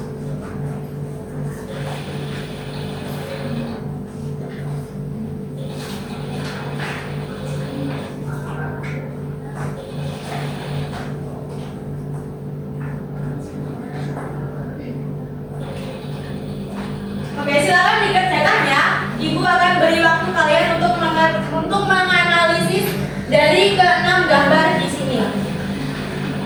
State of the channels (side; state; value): both; identical; correlation 1.00